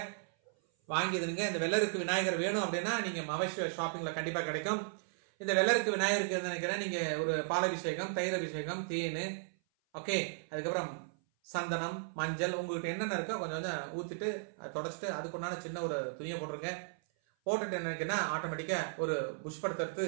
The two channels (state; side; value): silent; left; 54 dB below the other